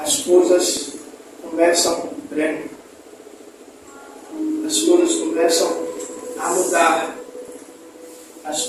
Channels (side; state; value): both; identical; correlation 1.00